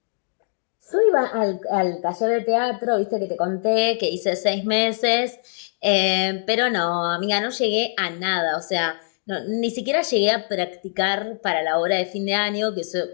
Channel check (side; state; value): right; silent; digital silence